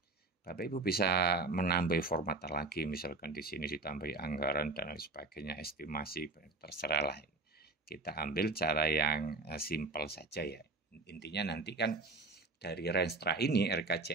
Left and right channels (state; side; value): quieter; left; 3.4 dB